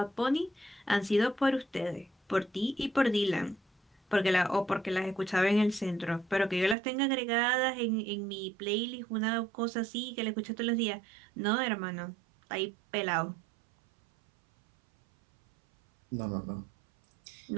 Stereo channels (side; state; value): left; drops out; at 6.8 s